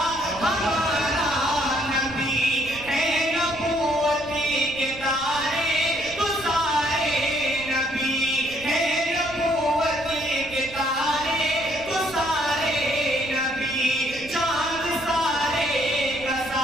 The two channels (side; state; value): right; noise; rumble, 18 dB below the sound